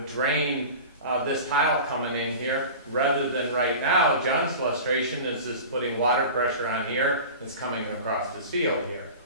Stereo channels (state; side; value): inverted; both; correlation -0.35